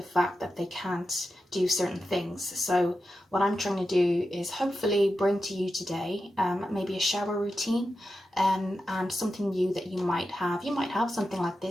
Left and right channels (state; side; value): normal; both; correlation 0.90